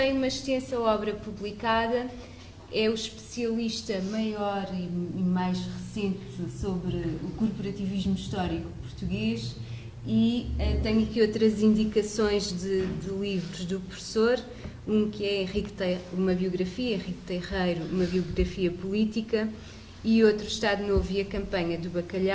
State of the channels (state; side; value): identical; both; correlation 1.00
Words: uma extensa obra publicada, é o especialista maior e mais recente sobre o corporativismo histórico português e tenho aqui outras indicações de livros do professor, um que é uma biografia, Henrique Terreiro, uma biografia política, e outro Estado Novo e a Campanha do